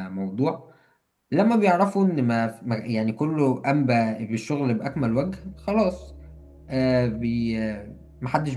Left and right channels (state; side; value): identical; both; correlation 1.00